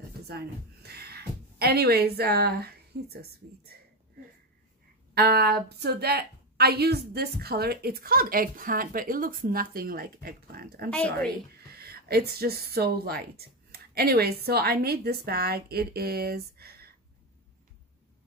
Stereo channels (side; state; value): both; normal; correlation 0.12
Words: designer. Anyways, he's so sweet. So that I used this color. It's called Eggplant, but it looks nothing like Eggplant. I'm sorry. Agree. It's just so light. Anyways, so I made this bag. It is...